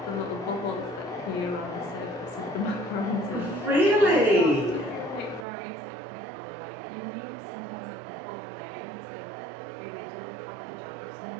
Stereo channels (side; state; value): left; drops out; at 5.5 s